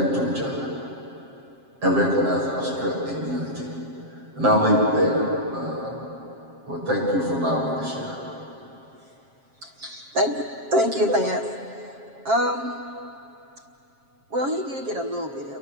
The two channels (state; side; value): late; left; 7.4 ms